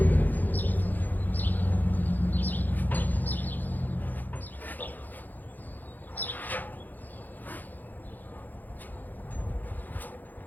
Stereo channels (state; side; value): late; right; 0.085 ms